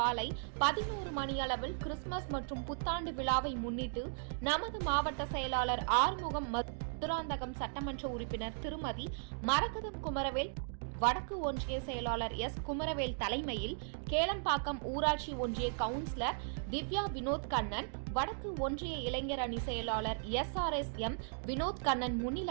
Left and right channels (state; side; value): silent; left; digital silence